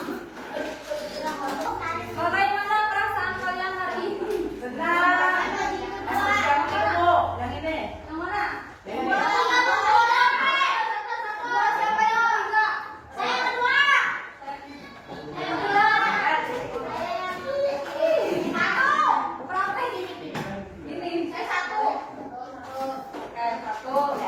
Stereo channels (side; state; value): both; identical; correlation 1.00